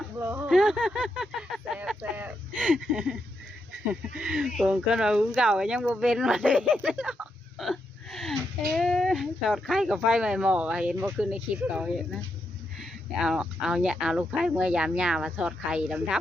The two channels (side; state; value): both; normal; correlation 0.82